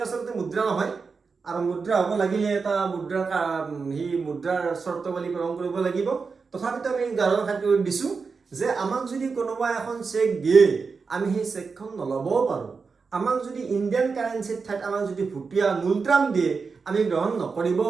আচলতে মুদ্ৰা নহয়, আৰু মুদ্ৰা হ'ব লাগিলে এটা মুদ্ৰাৰ সেই মুদ্ৰাৰ চৰ্তাৱলী পূৰণ কৰিব লাগিব। তথাপিতো আমি উদাহৰণ খাতিৰত দিছোঁ যে আমাক যদি কোনোবা এখন চেক দিয়ে, আমি সেই চেকখন নল'বও পাৰোঁ। আমাক যদি ইণ্ডিয়ান কাৰেঞ্চিৰ ঠাইত আমাক যদি ভুটীয়া মূলট্ৰাম দিয়ে, আমি গ্ৰহণ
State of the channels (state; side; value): quieter; left; 4.9 dB